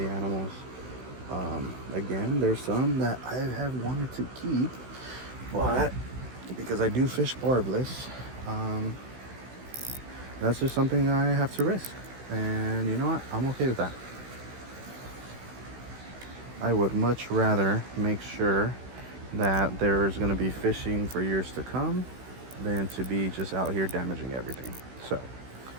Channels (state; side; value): late; left; 16 ms